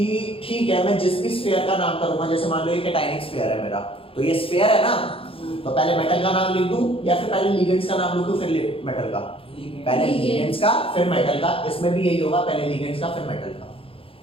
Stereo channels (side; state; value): right; late; 0.27 ms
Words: ठीक है मैं जिस भी स्फीयर का नाम करूंगा, जैसे मान लो ये कैटायनिक स्फीयर है मेरा, तो ये स्फीयर है ना, तो पहले मेटल का नाम लिख दूं या फिर पहले लिगेंड्स का नाम लिखूं फिर मेटल का? पहले लिगेंड्स का फिर मेटल का। इसमें भी यही होगा, पहले लिगेंड्स का फिर मेटल का।